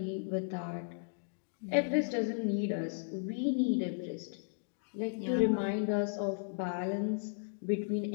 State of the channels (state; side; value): silent; right; digital silence